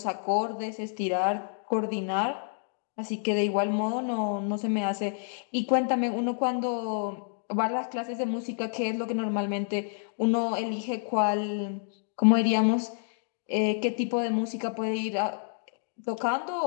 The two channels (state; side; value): silent; right; 59 dB below the other